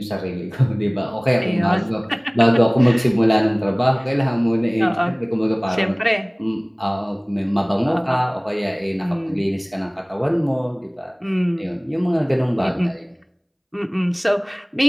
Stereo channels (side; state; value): both; identical; correlation 1.00